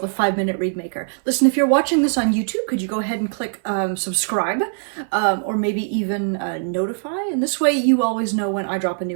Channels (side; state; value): left; silent; 59 dB below the other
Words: 5-Minute Read Maker. Listen, if you're watching this on YouTube, could you go ahead and click subscribe or maybe even notify? And this way you always know when I drop a